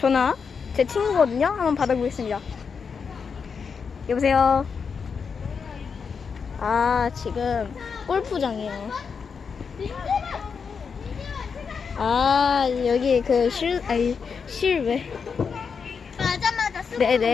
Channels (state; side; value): quieter; right; 5.9 dB